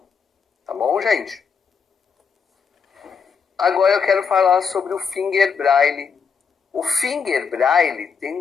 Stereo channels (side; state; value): right; quieter; 6.0 dB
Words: Tá bom, gente? Agora eu quero falar sobre o Finger Braille. O Finger Braille tem